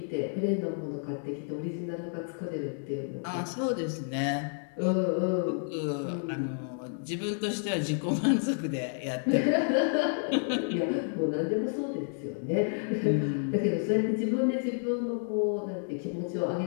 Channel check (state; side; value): silent; right; digital silence